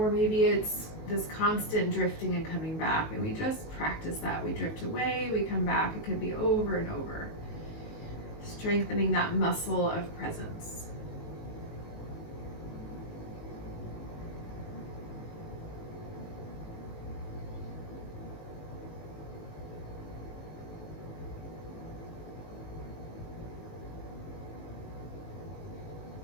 maybe it's this constant drifting and coming back, and we just practice that. We drift away, we come back. It could be over and over, strengthening that muscle of presence.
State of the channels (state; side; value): late; right; 19 ms